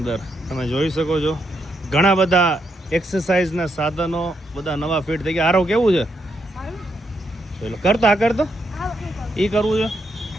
તમે જોઈ શકો છો ઘણા બધા એક્સરસાઇઝના સાધનો બધા નવા ફિટ થઈ ગયા. આરો કેવું છે? જોઈ લો, કરતો એ કરવું છે.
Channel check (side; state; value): both; normal; correlation 0.79